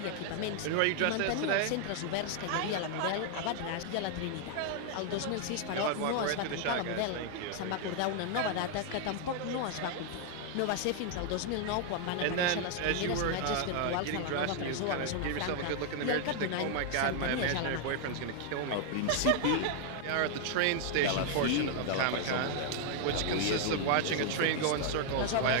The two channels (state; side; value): different; both; correlation 0.00